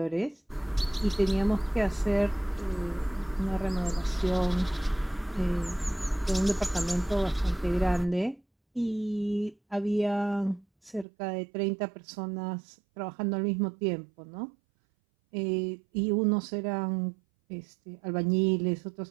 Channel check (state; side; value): drops out; left; at 11.1 s